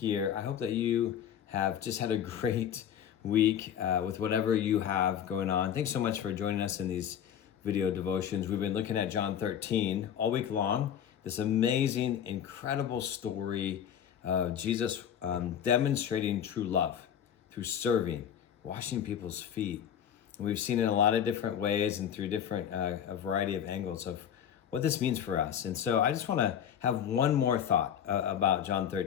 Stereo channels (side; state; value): right; quieter; 9.1 dB